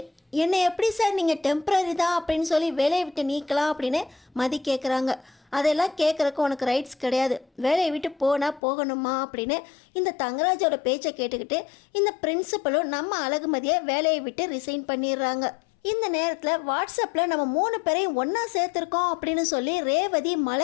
என்னை எப்படி சார் நீங்கள் டெம்ப்ரரி தான் அப்படின்னு சொல்லி வேலையை விட்டு நீக்கலாம் அப்படின்னு மதி கேட்குறாங்க. அதெல்லாம் கேட்குறக்கு உனக்கு ரைட்ஸ் கிடையாது, வேலையை விட்டு போனால் போகணுமா அப்படின்னு இந்த தங்கராஜோட பேச்சை கேட்டுக்கிட்டு இந்த பிரின்சிபலும் நம்ம அழகுமதியை வேலையை விட்டு ரிசைன் பண்ணிடுறாங்க. இந்த நேரத்தில் வாட்ஸ்அப்பில் நம்ம 3 பேரையும் ஒன்றா சேர்த்துருக்கோம் அப்படின்னு சொல்லி ரேவதி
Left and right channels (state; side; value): drops out; right; at 8.6 s